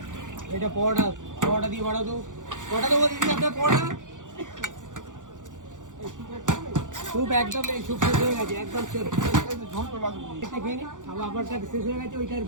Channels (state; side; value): late; left; 0.87 ms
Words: এটা পরোটা, পরোটা দিয়ে বাড়াও তো। পরোটা দেবো দিদি আপনার পরোটা। স্যুপ একদম নেই, স্যুপ শেষ হয়ে গেছে একদম শেষ। খেয়ে নি আপনারটা শেষ হয়ে গেছে, ওইটার